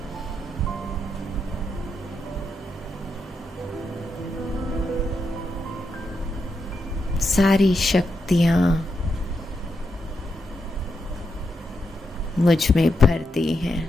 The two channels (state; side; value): normal; both; correlation 0.84